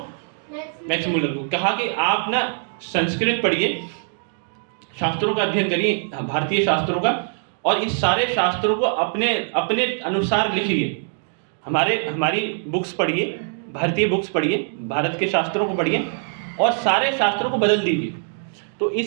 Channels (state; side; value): silent; left; digital silence